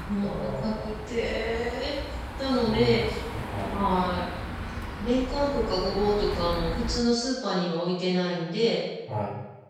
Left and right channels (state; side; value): identical; both; correlation 1.00